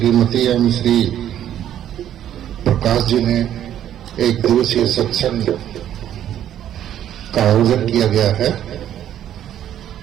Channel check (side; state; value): left; quieter; 11.0 dB